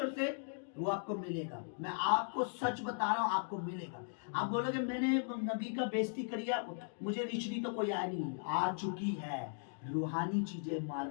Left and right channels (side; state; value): right; silent; digital silence